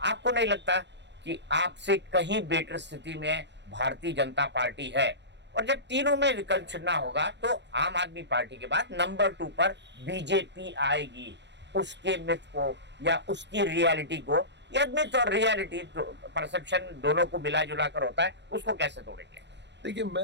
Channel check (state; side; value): late; left; 0.51 ms